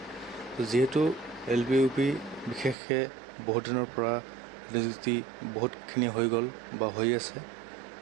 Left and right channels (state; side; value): drops out; left; at 2.8 s